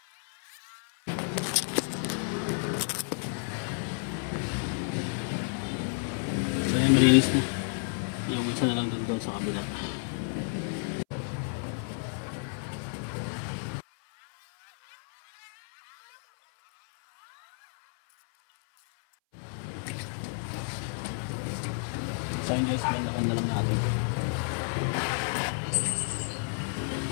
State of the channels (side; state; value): right; silent; 57 dB below the other